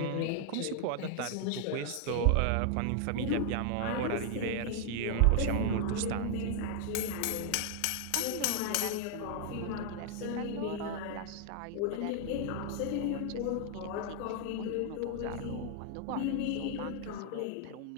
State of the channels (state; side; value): different; both; correlation 0.00